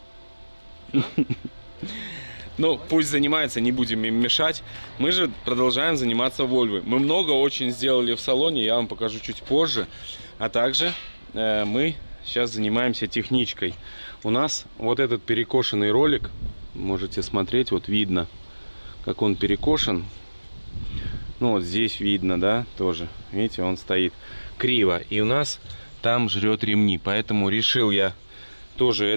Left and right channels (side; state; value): both; inverted; correlation -1.00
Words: Ну, пусть занимается, не будем им мешать. Мы же продолжаем заниматься Вольвой. Мы много очень сделали в салоне, я вам покажу чуть позже. А также мы сейчас занимаемся техничкой. У нас вот этот перекошенный ролик, можете смотреть, вот видно, как он перекошен. Ну, вот здесь видно, да, тоже. Видите, он стоит криво. И у нас там жрет ремни. Поэтому решил я тоже